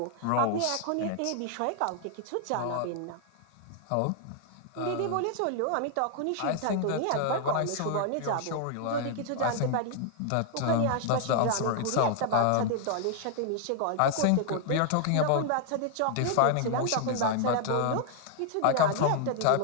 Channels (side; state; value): both; different; correlation 0.00